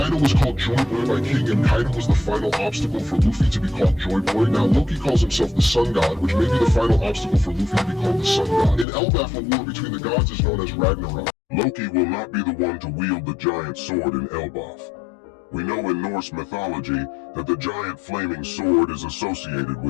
was called Joy Boy by King, and Kaido was the final obstacle for Luffy to be called Joy Boy. Now Loki calls himself the Sun God, which may be the final obstacle for Luffy to be called the Sun God. In Elbaf, a war between the gods is known as Ragnarok. Loki will not be the one to wield the giant sword in Elbaf. We know in Norse mythology that the giant flaming sword is associated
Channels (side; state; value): right; drops out; at 8.8 s